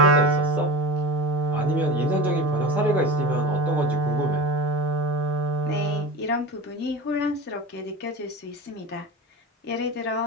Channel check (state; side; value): normal; both; correlation 0.29